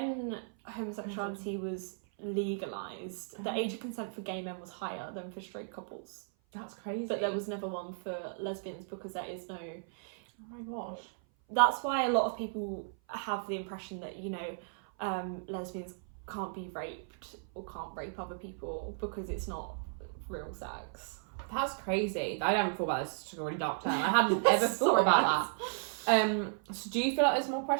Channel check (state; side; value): silent; left; 55 dB below the other